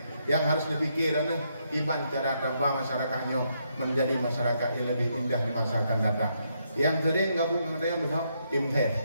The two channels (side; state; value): both; inverted; correlation -0.77